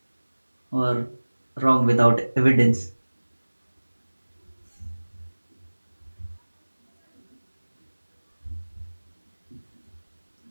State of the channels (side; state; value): both; inverted; correlation -1.00